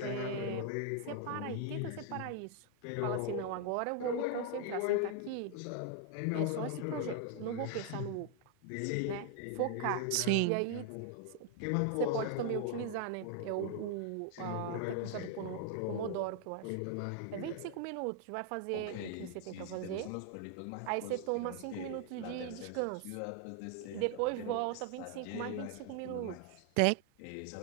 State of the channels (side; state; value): both; different; correlation 0.00